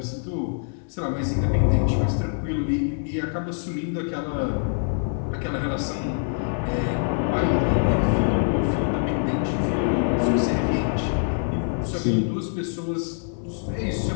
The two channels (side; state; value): right; silent; 62 dB below the other